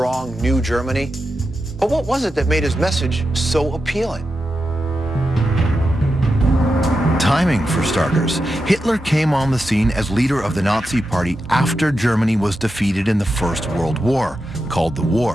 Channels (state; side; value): normal; both; correlation 0.89